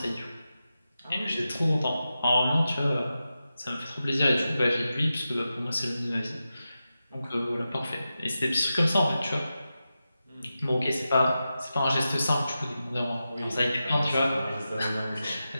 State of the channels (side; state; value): both; inverted; correlation -0.91